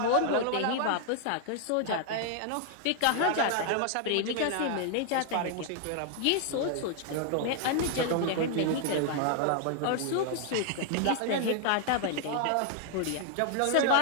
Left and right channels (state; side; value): different; both; correlation 0.00